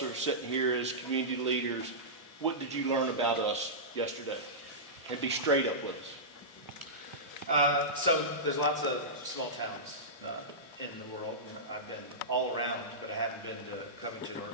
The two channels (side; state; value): both; normal; correlation -0.16